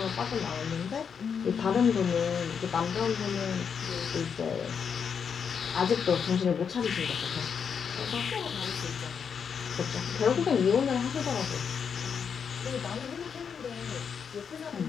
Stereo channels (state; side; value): quieter; right; 6.8 dB